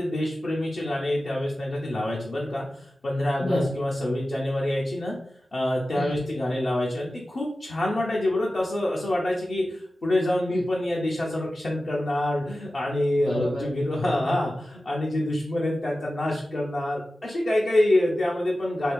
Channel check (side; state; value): both; normal; correlation 0.94